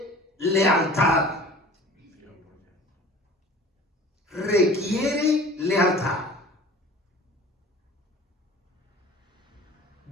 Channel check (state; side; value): normal; both; correlation 0.44